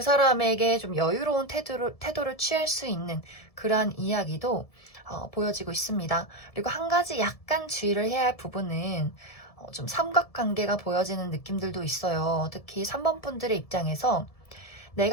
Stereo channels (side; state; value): right; late; 1.7 ms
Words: 사람에게 좀 여유로운 태도를 취할 수 있는 그러한 이야기도 보여지고 있습니다. 그리고 한 가지 약간 주의를 해야 할 부분은 좀 삼각관계가 보여지는 느낌들도 있어요. 특히 3번 분들의 입장에서